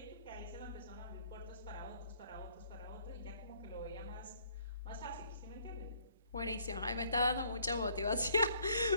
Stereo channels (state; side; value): inverted; both; correlation -0.64